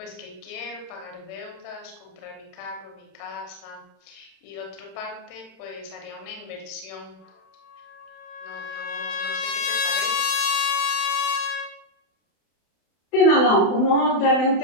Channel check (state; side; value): late; right; 31 ms